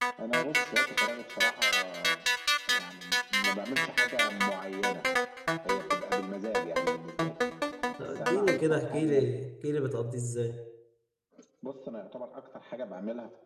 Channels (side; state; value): both; identical; correlation 1.00